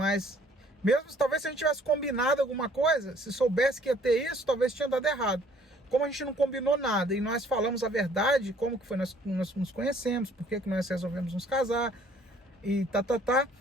mesmo talvez se a gente tivesse combinado alguma coisa, se soubesse que ia ter isso, talvez tinha dado errado. Como a gente não combinou nada e nós falamos a verdade, como que foi, nós nos conhecemos, por que nós resolvemos nos casar e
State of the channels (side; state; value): both; normal; correlation 0.59